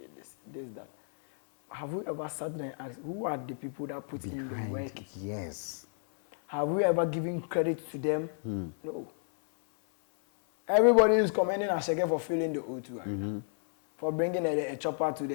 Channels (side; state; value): right; silent; 57 dB below the other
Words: this, that. Have you ever sat there and asked, who are the people that put in the work? Yes. Have we ever given credit to them? No. Everybody is commending Asheke for filling the O2 arena, for bringing a chopper to